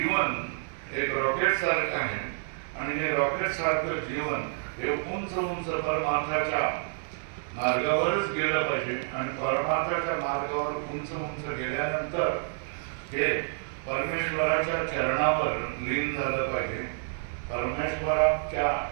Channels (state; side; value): silent; left; 55 dB below the other